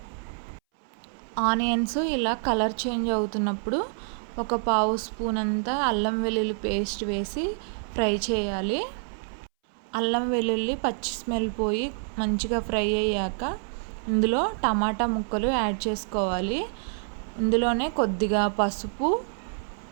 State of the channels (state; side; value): silent; left; 60 dB below the other